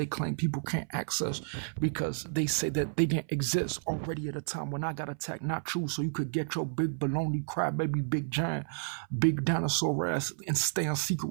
claim people can't access, because they say that they didn't exist already at a time when I got attacked. Not true. So you could get your big baloney crybaby, big giant, big dinosaur ass and stay in secret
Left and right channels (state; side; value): silent; left; 57 dB below the other